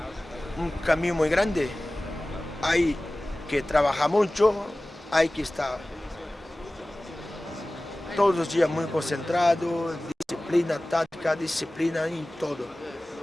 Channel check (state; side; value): normal; both; correlation 0.97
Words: camino muy grande, hay que trabajar mucho, hay que estar todos los días muy concentrado, disciplina táctica, disciplina en todo.